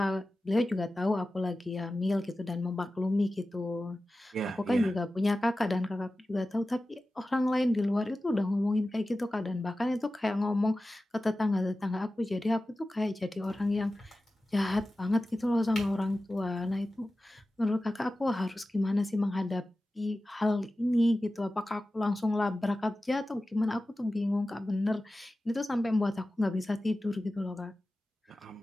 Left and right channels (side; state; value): both; normal; correlation 0.95